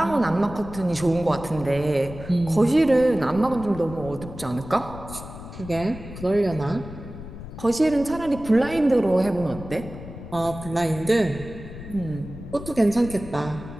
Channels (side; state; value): left; noise; rumble, 13 dB below the sound